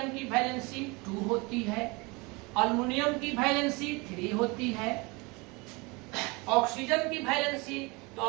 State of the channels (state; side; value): quieter; left; 26.7 dB